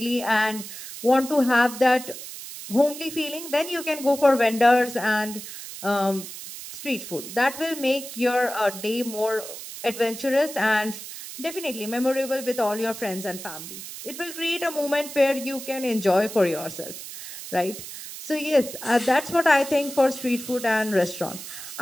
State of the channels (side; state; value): right; noise; hiss, 11 dB below the sound